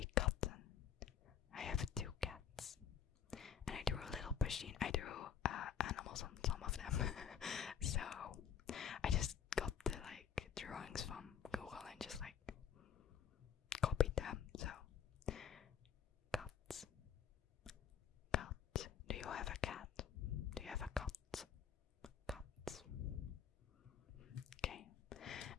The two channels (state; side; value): quieter; right; 8.1 dB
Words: katten. I have 2 cats. And I drew a little machine. I drew animals on some of them. So I just got the drawings from Google and just copied them. So cats. Cat. Do you have a cat? Do you have a cat? Cat. Okay.